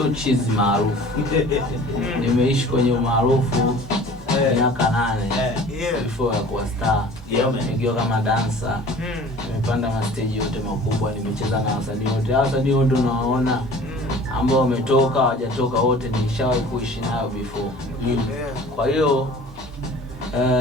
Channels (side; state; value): both; normal; correlation 0.46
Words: cheese maarufu. Nimeishi kwenye umaarufu miaka 8 before ya kuwa star. Nikiwa kama dancer. Nimepanda ma stage yote makubwa, nimecheza na wasanii wote. Wasanii wote unawaona ambao wametoka, hawajatoka wote nishawahi kuishi nao before. Kwa hiyo